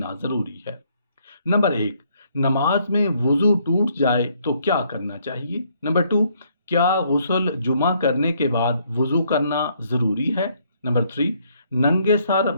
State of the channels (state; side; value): inverted; both; correlation -0.69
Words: ضروری ہے۔ نمبر 1، نماز میں وضو ٹوٹ جائے تو کیا کرنا چاہیے؟ نمبر 2، کیا غسل جمعہ کرنے کے بعد وضو کرنا ضروری ہے؟ نمبر 3، ننگے سر